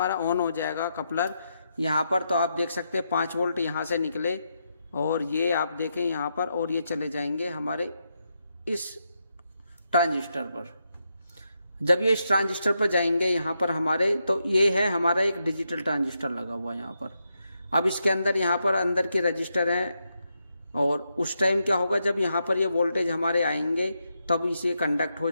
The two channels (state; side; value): inverted; both; correlation -0.83